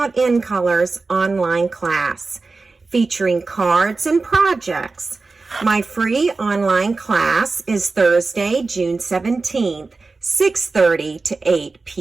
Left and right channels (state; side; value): quieter; left; 3.9 dB